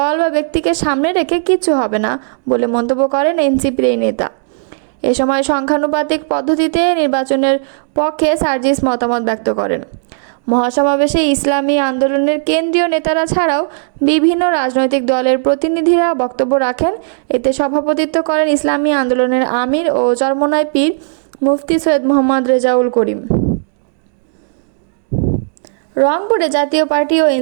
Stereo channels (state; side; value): silent; left; digital silence